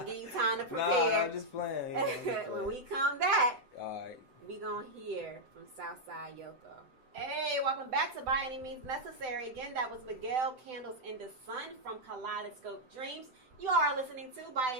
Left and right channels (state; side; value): late; left; 7.8 ms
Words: give you time to prepare. Nah, I'm just playing. When we come back, all right, we gonna hear from Southside Yoko. Hey, welcome back to By Any Means Necessary. Again, that was Miguel Candles in the Sun from Kaleidoscope Dreams. You are listening to By